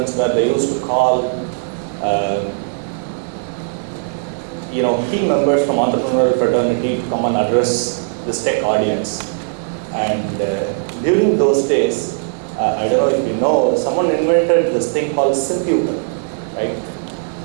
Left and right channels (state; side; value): silent; left; digital silence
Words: where they used to call key members from entrepreneurial fraternity to come and address this tech audience. And during those days, I don't know if you know, someone invented this thing called Simputer, right?